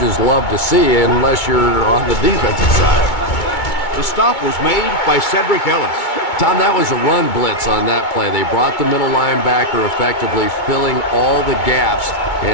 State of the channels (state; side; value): late; right; 2.2 ms